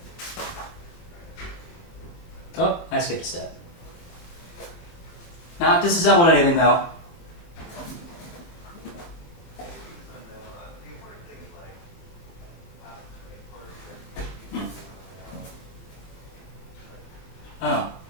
Oh, I skipped a step. Not disassembled anything though. Oh.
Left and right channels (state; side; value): late; right; 23 ms